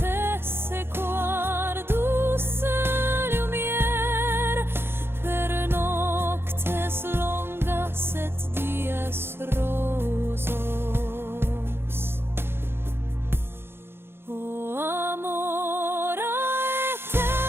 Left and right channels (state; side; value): late; left; 0.11 ms